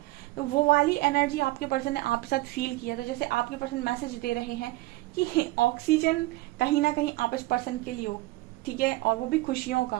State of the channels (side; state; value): left; quieter; 19.3 dB